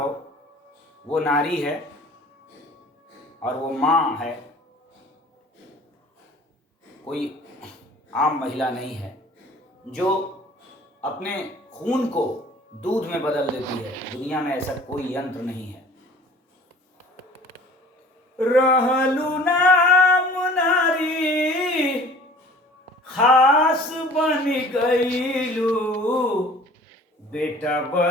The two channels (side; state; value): both; normal; correlation 0.48